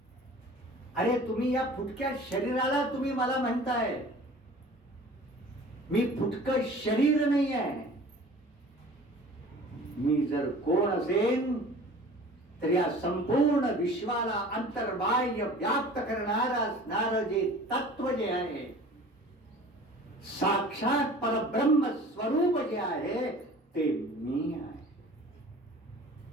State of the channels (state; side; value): normal; both; correlation 0.44